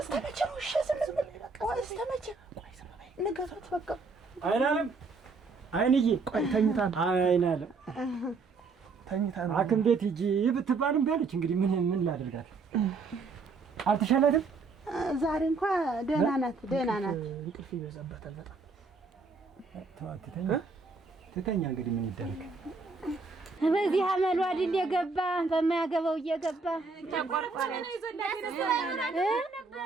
استمتع وش اسمه استمتع نقطت بقى አይናለም አይንዬ ቆይ ተኝታን አይናለም ተኝታን አክም ቤት ሂጂ ብትባልም ቢያለች እንግዲህ ምን ላደርጋት አልተሻላትም ዛሬ እንኳን ደህና ናት እንቅልፍ ይበዛበታል በጣም ትተኛ እንግዲህ ምን ይደረግ በዚህ አመሉ አይደል የገባ በማያገባው እየገባ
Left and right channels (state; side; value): quieter; left; 4.2 dB